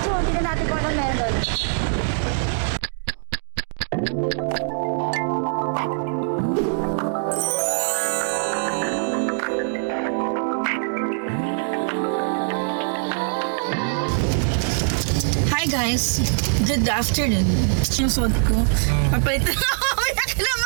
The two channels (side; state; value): left; silent; digital silence